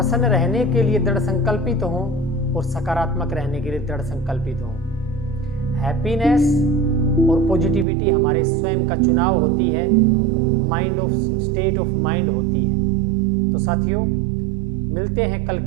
रहने के लिए दृढ़ संकल्पित हों और सकारात्मक रहने के लिए दृढ़ संकल्पित हों। हैप्पीनेस और पॉजिटिविटी हमारे स्वयं का चुनाव होती है, mind of state of mind होती है। तो साथियों, मिलते हैं कल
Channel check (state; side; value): drops out; left; at 7.9 s